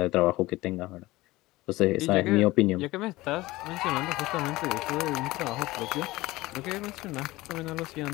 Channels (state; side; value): quieter; right; 19.2 dB